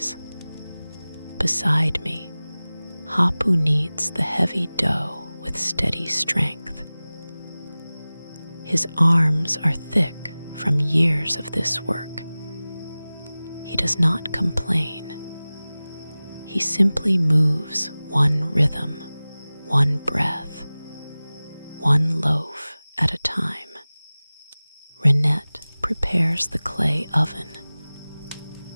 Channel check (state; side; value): inverted; both; correlation -0.98